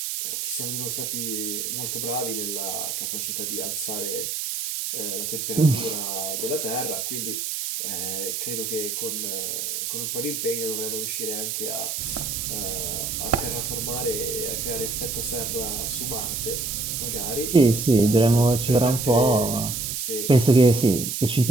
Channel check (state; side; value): noise; right; hiss, 3 dB below the sound